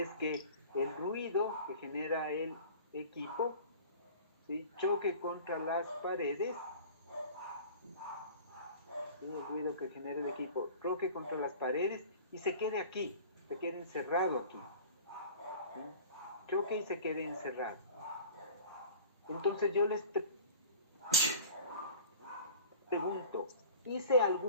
que el ruido que genera el equipo, ¿sí?, choque contra las paredes. El ruido que genera el equipo choque contra las paredes y se quede aquí, se quede encerrado aquí. ¿Sí? Choque y se quede encerrado. Entonces yo les pregunto, ¿hice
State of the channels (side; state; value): both; inverted; correlation -0.41